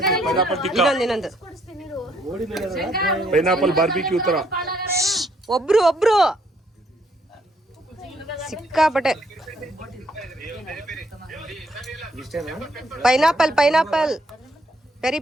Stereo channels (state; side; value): normal; both; correlation 0.70